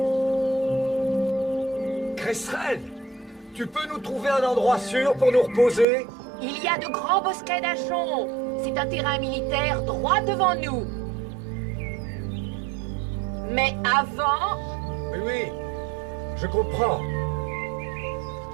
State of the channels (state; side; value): drops out; left; at 5.9 s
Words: Cresserelle, tu peux nous trouver un endroit sûr pour nous reposer? Il y a de grands bosquets d'achons. c'est un terrain militaire droit devant nous. Mais avant... Oui, oui, je comprends.